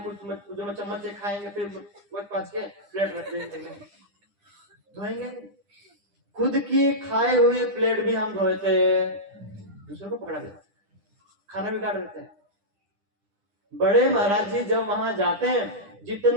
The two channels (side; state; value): left; late; 10 ms